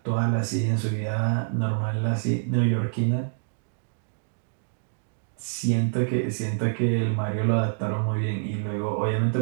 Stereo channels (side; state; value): left; silent; digital silence